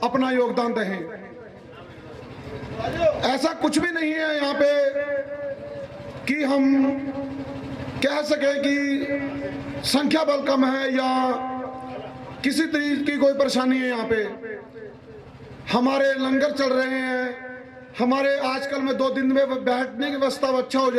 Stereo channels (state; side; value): identical; both; correlation 1.00